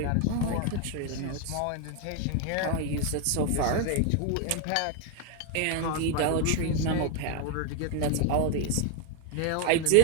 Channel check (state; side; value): different; both; correlation 0.01